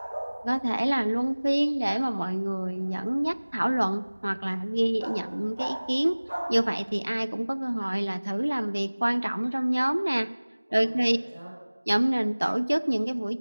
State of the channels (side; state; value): both; inverted; correlation -1.00